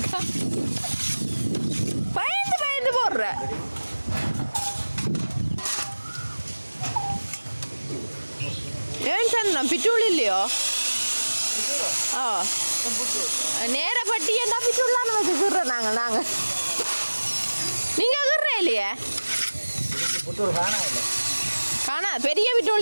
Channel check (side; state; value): both; inverted; correlation -1.00